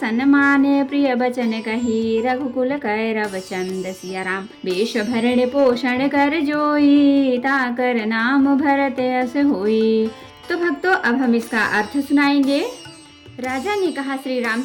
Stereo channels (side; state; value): both; identical; correlation 1.00